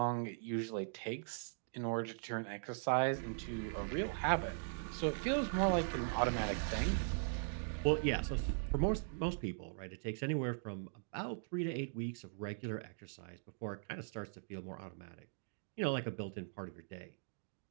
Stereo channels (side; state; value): left; silent; digital silence